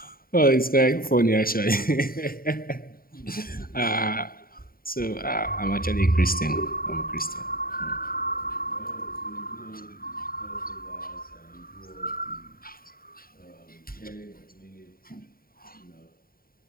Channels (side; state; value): right; late; 0.43 ms